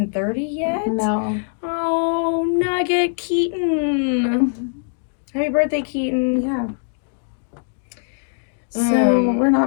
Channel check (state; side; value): silent; right; digital silence